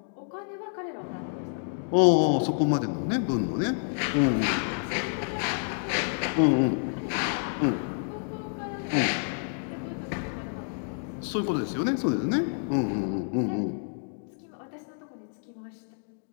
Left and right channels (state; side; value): silent; right; digital silence